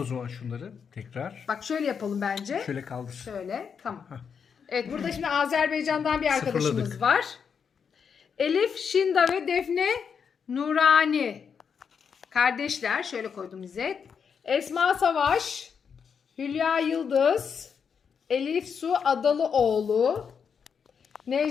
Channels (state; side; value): quieter; right; 6.6 dB